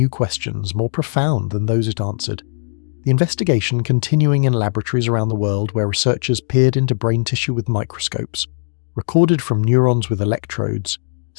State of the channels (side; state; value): right; silent; digital silence